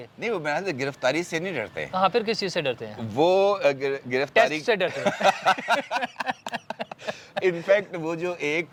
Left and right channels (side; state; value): both; identical; correlation 1.00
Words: नहीं, वो मेरे गिरफ्तारी से नहीं डरते। हाँ, फिर किस चीज़ से डरते हैं? वो गिरफ्तारी से डरते हैं। इनफैक्ट वो जो एक